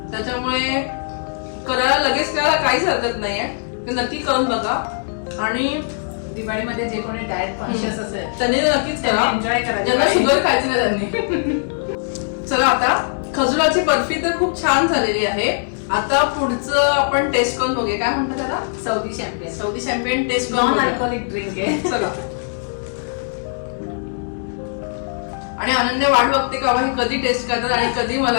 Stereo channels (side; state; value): right; silent; digital silence